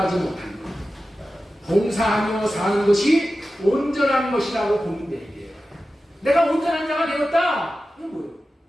못하는 것. 봉사하며 사는 것이 온전한 것이라고 보면 돼요. 내가 온전한 자가 되었다. 이건 뭐예요?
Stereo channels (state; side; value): normal; both; correlation 0.94